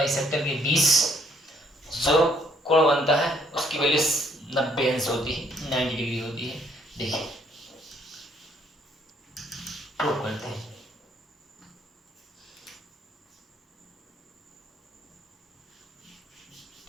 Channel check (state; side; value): normal; both; correlation 0.66